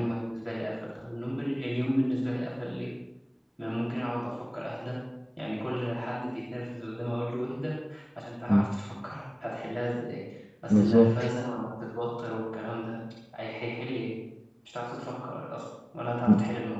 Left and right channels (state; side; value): identical; both; correlation 1.00